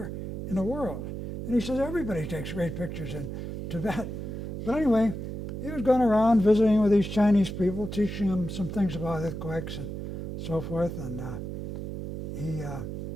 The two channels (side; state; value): right; noise; hum, 6 dB below the sound